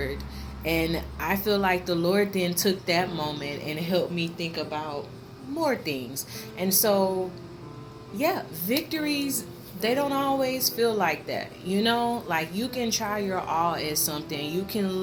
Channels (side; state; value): both; identical; correlation 1.00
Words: And I feel like the Lord then took that moment and helped me think about more things. And so, yeah, victories, they don't always feel like that. Like you can try your all at something. You